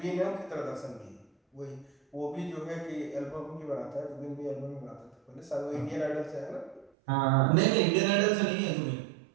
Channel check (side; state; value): left; drops out; at 6.9 s